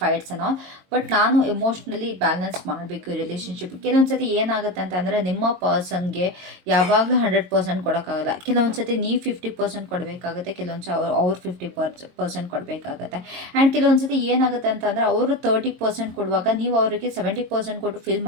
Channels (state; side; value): late; left; 22 ms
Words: fights and all, but ನಾನು ಎಮೋಷ್ನಲಿ ಬ್ಯಾಲೆನ್ಸ್ ಮಾಡಬೇಕು ಈ ರಿಲೇಷನ್ಶಿಪ್. ಕೆಲವೊಂದು ಸತಿ ಏನಾಗುತ್ತೆ ಅಂತಂದರೆ, ನಿಮ್ಮ ಪರ್ಸನ್ಗೆ ಯಾವಾಗಲೂ 100% ಕೊಡೋಕ್ಕಾಗಲ್ಲ. ಕೆಲವೊಂದು ಸತಿ ನೀವು 50% ಕೊಡಬೇಕಾಗುತ್ತೆ, ಕೆಲವೊಂದು ಸಲ ಅವ್ರು 50% ಕೊಡಬೇಕಾಗತ್ತೆ. ಆ್ಯಂಡ್ ಕೆಲವೊಂದು ಸತಿ ಏನಾಗುತ್ತೆ ಅಂತಂದರೆ, ಅವರು 30% ಕೊಡುವಾಗ ನೀವು ಅವರಿಗೆ 70% ಕೊಟ್ಟು ಫೀಲ್